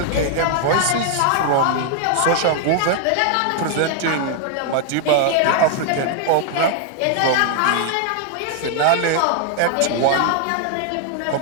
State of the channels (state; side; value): different; both; correlation 0.00